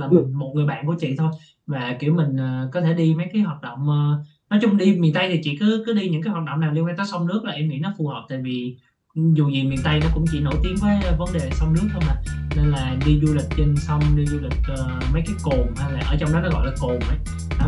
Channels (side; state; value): both; identical; correlation 1.00